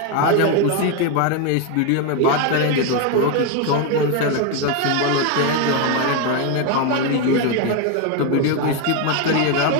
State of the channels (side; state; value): both; different; correlation 0.02